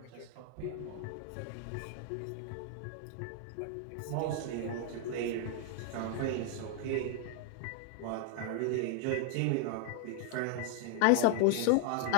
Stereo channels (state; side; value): different; both; correlation 0.00